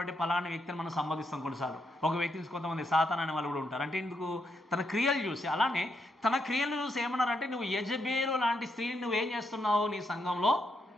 పలాని వ్యక్తిని మనం సంబోధిస్తాం కొన్నిసార్లు. ఒక వ్యక్తిని కొంతమంది సాతాన్ అనే వాళ్ళు కూడా ఉంటారు. అంటే ఎందుకు? తన క్రియలు చూసి. అలానే తన క్రియలు చూసి ఏమన్నారంటే, నువ్వు యెజబేలు లాంటి స్త్రీని నువ్వేం చేస్తున్నావు? నీ సంఘంలో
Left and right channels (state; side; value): normal; both; correlation 0.80